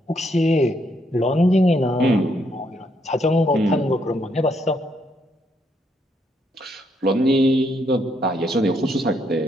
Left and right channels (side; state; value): both; normal; correlation 0.74